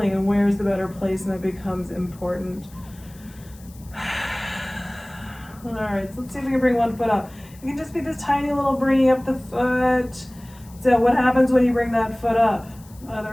and where's the better placement becomes important. All right, so let's see if we can bring one foot up. It can just be this tiny little bringing up the foot. So what happens when you bring that foot up?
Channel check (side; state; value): left; noise; hiss, 24 dB below the sound